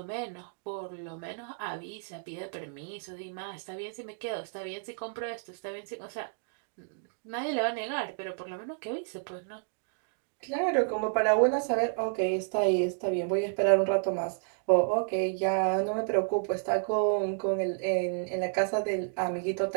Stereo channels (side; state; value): left; silent; digital silence